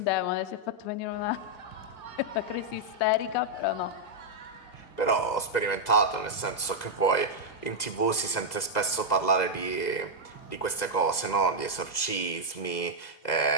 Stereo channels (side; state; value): right; late; 2.0 ms